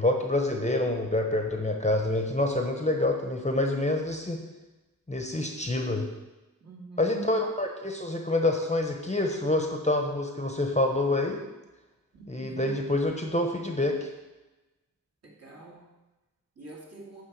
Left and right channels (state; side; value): normal; both; correlation 0.37